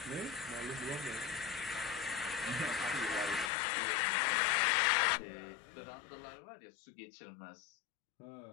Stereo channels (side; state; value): right; drops out; at 3.5 s